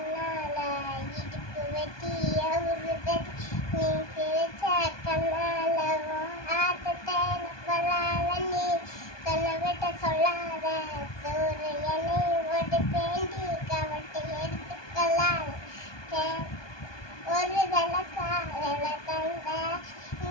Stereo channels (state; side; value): late; right; 1.2 ms